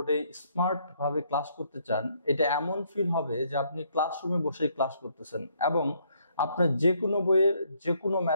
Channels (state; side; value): inverted; both; correlation -0.69